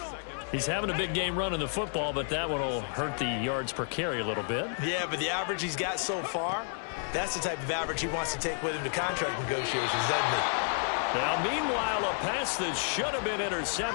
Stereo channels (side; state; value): right; silent; 57 dB below the other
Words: He's having a big game running the football, but that one will hurt the yards per carry a little bit. Yeah, but the average he's got so far, that's the type of average he wants to take with him to contract negotiations, doesn't he? Now, meanwhile, a pass that should have been